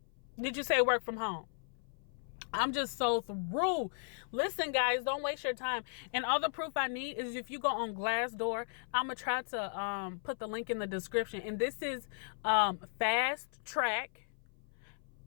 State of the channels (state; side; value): silent; right; 54 dB below the other